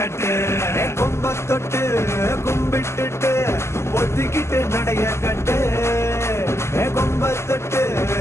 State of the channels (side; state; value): right; late; 0.13 ms